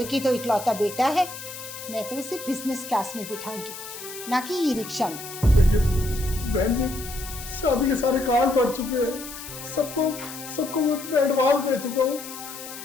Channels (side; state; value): left; noise; hiss, 12 dB below the sound